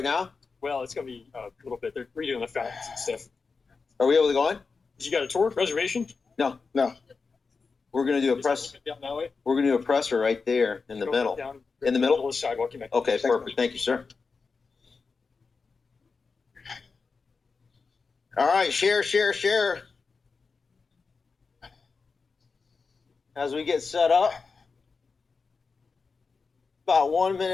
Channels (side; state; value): right; quieter; 4.7 dB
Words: now? well, it's gonna be a little bit. They're redoing the fountains and stuff. Are we able to go in? You got a tour reservation? No. We're gonna do a press. Down that way. We're gonna do a presser right there in the Go middle. down In the middle? of the sidewalk. You might. Okay, perfect. Thank you, sir. All right, share. As we get set up, about 1